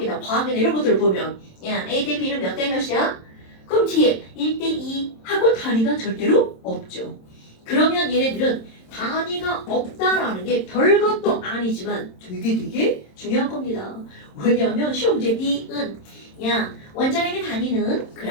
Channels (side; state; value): right; late; 27 ms